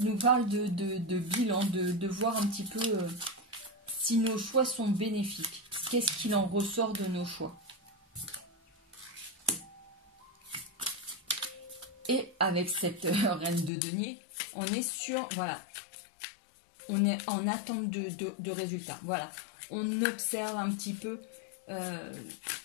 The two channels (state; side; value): drops out; right; at 13.7 s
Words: parle de bilan, de voir un petit peu si nos choix sont bénéfiques. Qu'est-ce qu'il en ressort de nos choix? Et avec cette reine de denier, on est sur, voilà, on est en attente de résultats. Voilà, on observe un petit peu